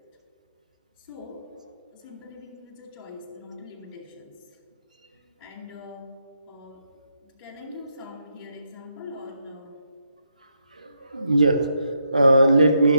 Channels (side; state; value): both; inverted; correlation -0.79